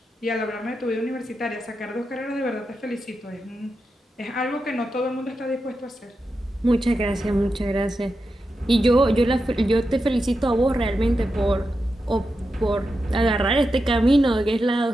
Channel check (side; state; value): both; normal; correlation 0.88